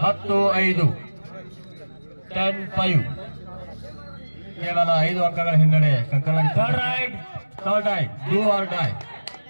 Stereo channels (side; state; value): both; inverted; correlation -1.00